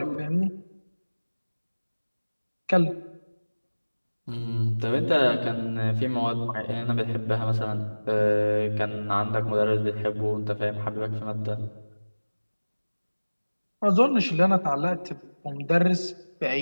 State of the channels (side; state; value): both; inverted; correlation -1.00